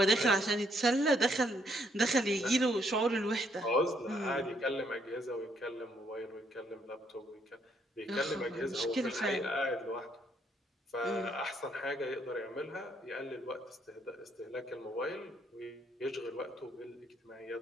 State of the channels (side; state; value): both; normal; correlation 0.71